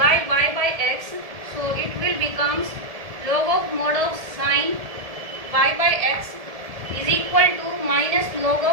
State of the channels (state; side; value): late; left; 1.7 ms